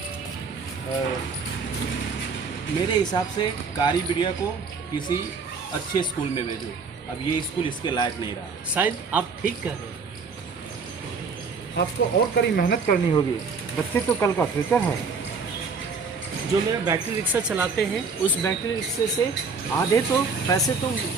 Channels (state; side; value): quieter; left; 4.9 dB